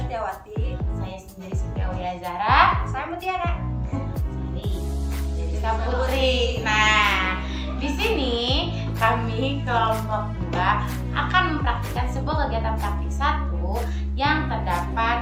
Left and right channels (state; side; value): identical; both; correlation 1.00